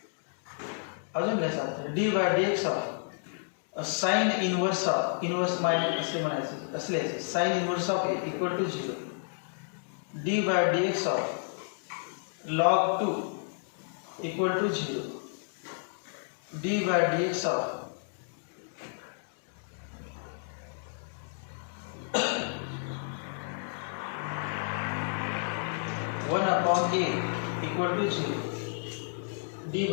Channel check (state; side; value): silent; right; digital silence